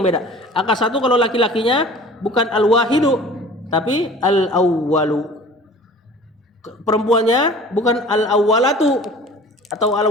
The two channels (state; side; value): normal; both; correlation 0.44